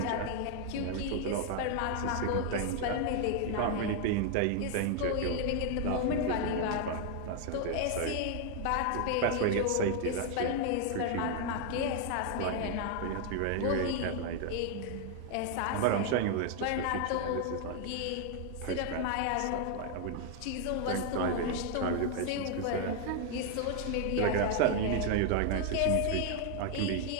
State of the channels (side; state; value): both; different; correlation 0.00